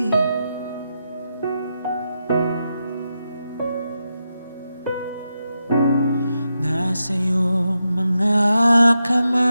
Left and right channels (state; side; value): inverted; both; correlation -0.87